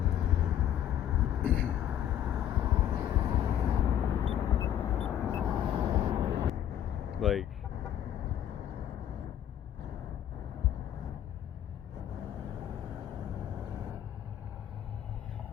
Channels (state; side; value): quieter; right; 10.6 dB